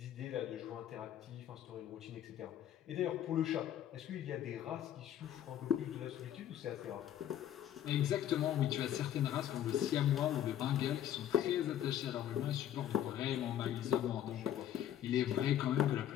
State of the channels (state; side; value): quieter; right; 11.0 dB